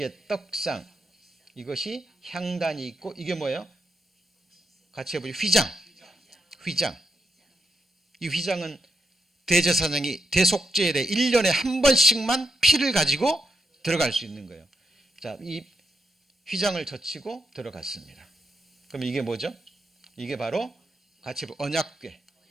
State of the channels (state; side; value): normal; both; correlation 0.83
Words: 떡상. 이것이 향단이 있고 이게 뭐예요? 같이 해보죠. 휘장. 이 휘장은 대제사장이 대속죄일에 1년에 한 번씩만 피를 가지고 들어갈 수 있는 거예요. 자, 이 휘장을 젖히고 들어갔습니다. 그럼 이게 뭐죠? 이게 바로 같이